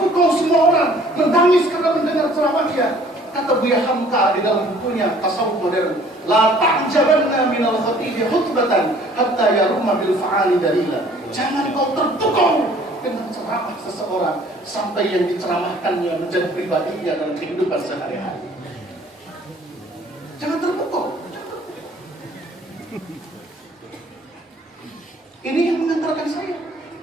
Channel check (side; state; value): both; normal; correlation 0.55